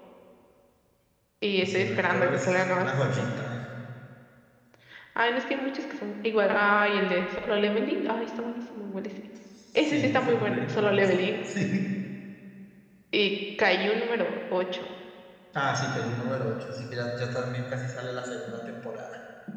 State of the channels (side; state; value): both; identical; correlation 1.00